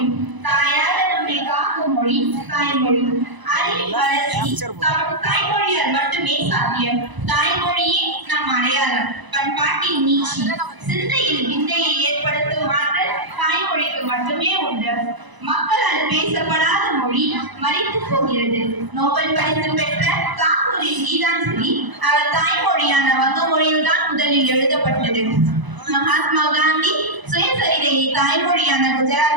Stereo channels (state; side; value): late; left; 1.0 ms